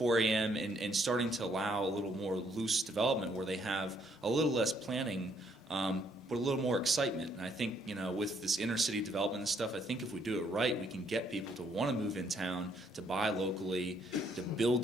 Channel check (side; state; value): both; normal; correlation 0.69